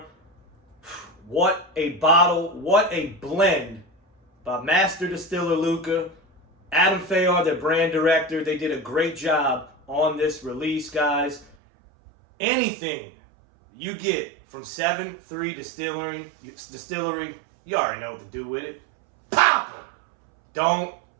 What a bottle, what a blend by Master Distiller Luca, Adam Fayard, their brand director. They did a great job on this release, guys. Anything you get from 7.3 Distillery, you already know what to do with it. Pop them. Don't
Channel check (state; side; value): drops out; left; at 11.6 s